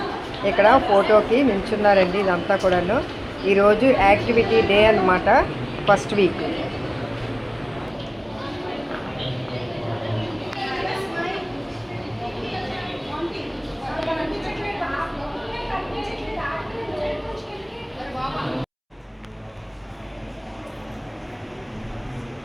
ఇక్కడ ఫోటోకి నిల్చున్నారండి. ఇదంతా కూడాను ఈరోజు యాక్టివిటీ డే అన్నమాట, ఫస్ట్ వీక్.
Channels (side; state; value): both; identical; correlation 1.00